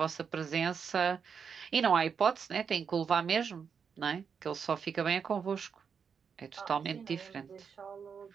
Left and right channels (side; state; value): left; quieter; 6.5 dB